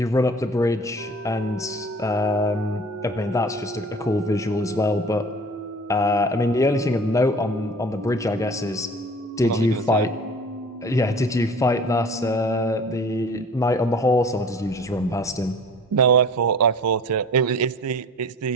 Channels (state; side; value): normal; both; correlation 0.44